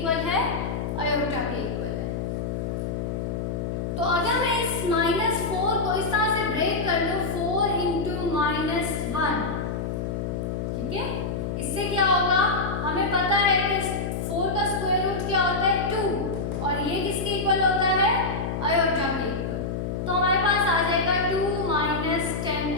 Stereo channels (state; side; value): noise; left; hum, 3 dB below the sound